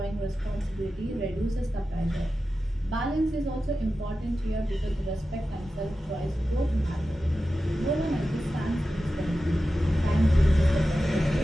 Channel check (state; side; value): normal; both; correlation 0.93